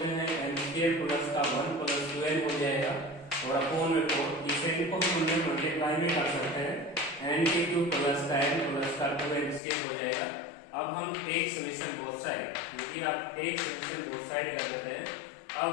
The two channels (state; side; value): drops out; right; at 9.6 s